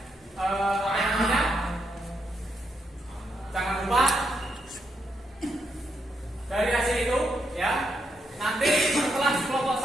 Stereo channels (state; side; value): normal; both; correlation 0.80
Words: apa namanya? Jangan lupa dari hasil itu, ya. Nanti setelah kelompok